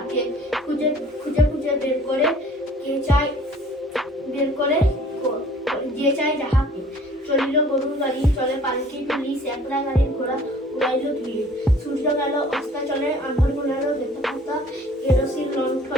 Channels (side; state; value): both; normal; correlation 0.52